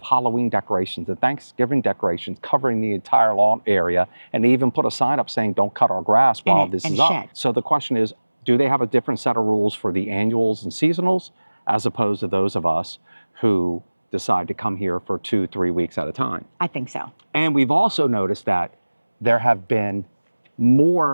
decorations and Thanksgiving decorations covering the entire lawn area, and they even put a sign up saying, don't cut our grass while this is up. So the question is, do they have a different set of rules for the annuals and seasonals as opposed to those of us who decide to come here for 2-3 weeks at a time? I think so. And we've also noticed that there have been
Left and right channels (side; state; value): both; inverted; correlation -1.00